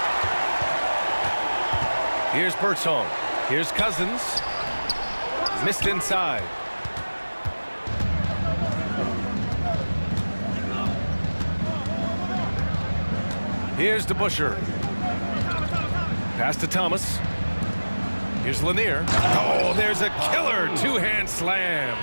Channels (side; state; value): both; inverted; correlation -1.00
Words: Here's Bertone. Here's Cousins. Missed inside. Here's DeBuscher. Pass to Thomas. Here's Lanier. Oh, there's a killer two-hand slam.